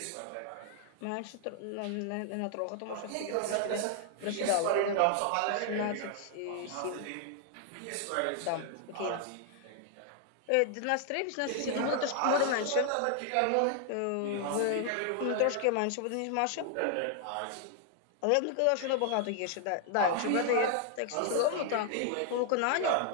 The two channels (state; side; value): different; both; correlation 0.00